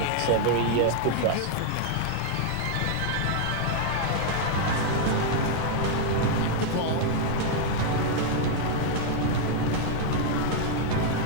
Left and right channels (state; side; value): different; both; correlation -0.01